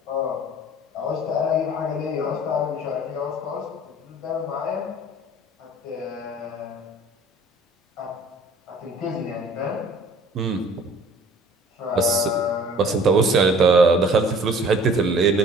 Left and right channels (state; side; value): normal; both; correlation 0.51